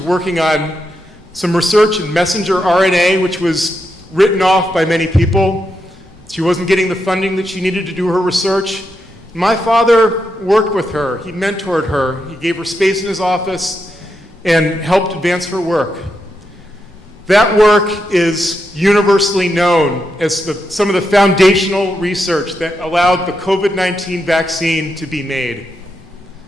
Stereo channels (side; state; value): both; normal; correlation 0.84